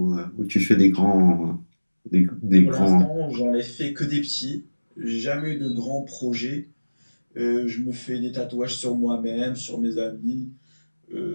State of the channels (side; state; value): both; inverted; correlation -1.00